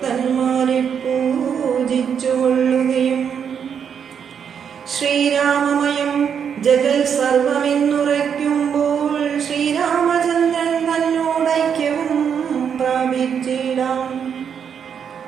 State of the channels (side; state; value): left; quieter; 7.6 dB